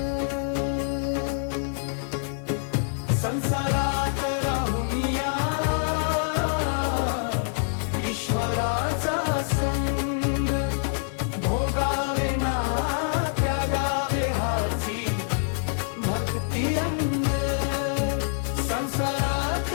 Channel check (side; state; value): right; silent; digital silence